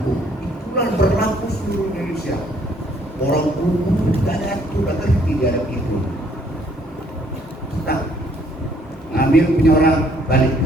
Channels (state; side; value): normal; both; correlation 0.64